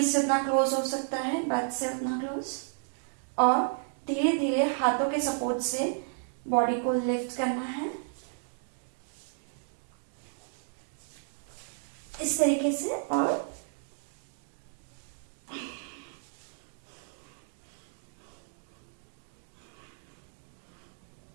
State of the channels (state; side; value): silent; left; digital silence